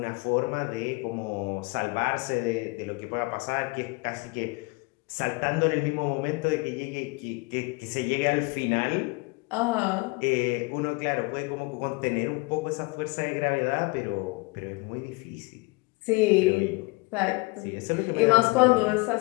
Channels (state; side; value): quieter; right; 26.8 dB